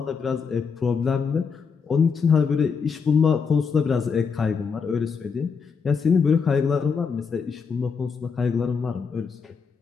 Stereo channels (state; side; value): quieter; right; 5.7 dB